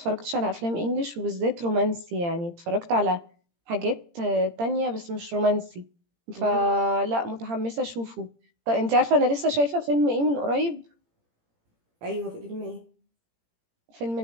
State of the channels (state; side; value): late; left; 17 ms